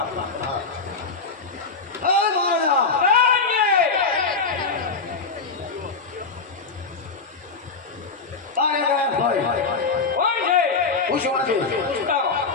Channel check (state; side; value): quieter; right; 4.5 dB